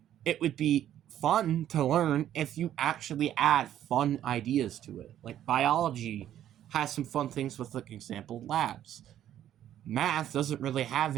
It would be fun to learn if you actually add fun ideas to it. Like biology has some fun things with, like, example labs. Math doesn't really have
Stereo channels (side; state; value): left; quieter; 11.3 dB